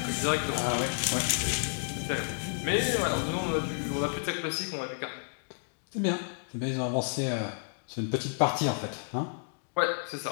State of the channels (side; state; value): right; silent; digital silence